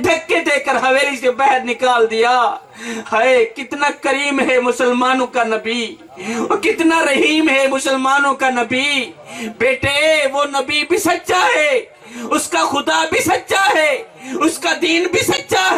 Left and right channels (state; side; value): identical; both; correlation 1.00